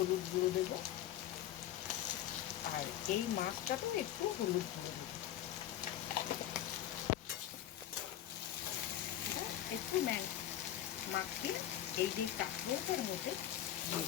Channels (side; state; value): right; quieter; 12.2 dB